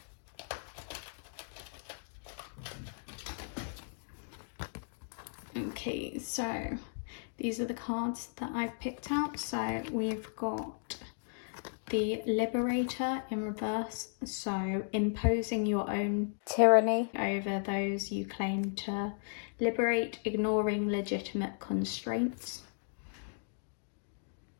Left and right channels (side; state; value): right; silent; digital silence